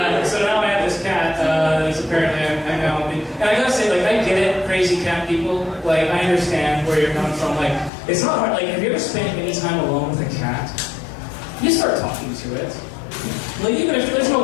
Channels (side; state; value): right; drops out; at 7.9 s